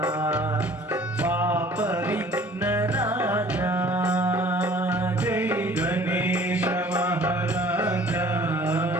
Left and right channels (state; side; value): normal; both; correlation 0.51